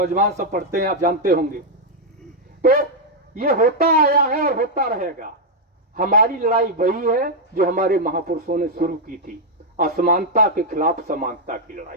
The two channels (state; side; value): normal; both; correlation -0.02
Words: सब पढ़ते हैं, आप जानते होंगे। तो ये होता आया है और होता रहेगा। हमारी लड़ाई वही है जो हमारे महापुरुषों ने शुरू की थी, असमानता के खिलाफ समानता की